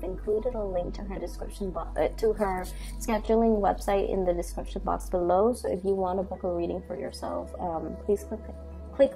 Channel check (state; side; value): identical; both; correlation 1.00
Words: included a link to her description to her scheduling website in the description box below. So if you want to book a reading for yourself, please click